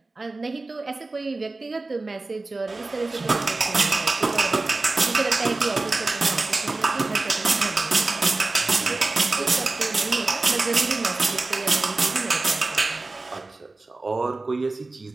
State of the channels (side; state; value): left; quieter; 3.3 dB